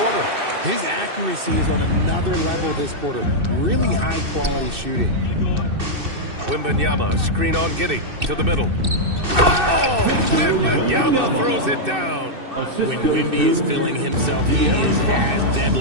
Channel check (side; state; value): left; late; 2.6 ms